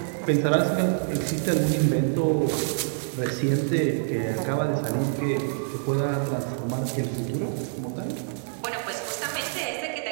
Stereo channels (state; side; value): silent; left; digital silence